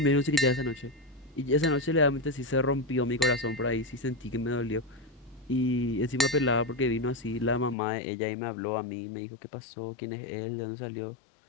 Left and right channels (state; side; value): drops out; right; at 7.8 s